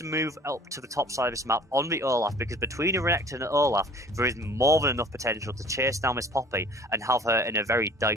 move up to the top side of this map on the Olaf, because between Renekton and Olaf there is more than enough potential to chase down Miss Poppy and have her in a very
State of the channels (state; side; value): normal; both; correlation 0.49